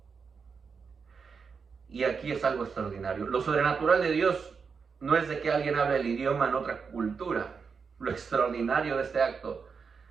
Y aquí es algo extraordinario. Lo sobrenatural de Dios no es de que alguien hable el idioma en otra cultura. Lo extraordinario de este acto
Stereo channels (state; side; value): quieter; left; 5.6 dB